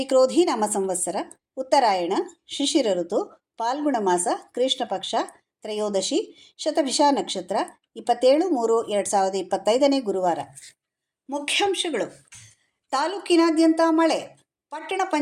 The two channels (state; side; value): identical; both; correlation 1.00